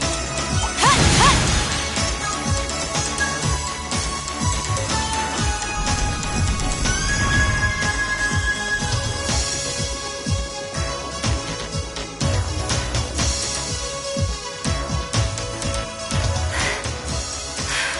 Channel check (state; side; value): identical; both; correlation 1.00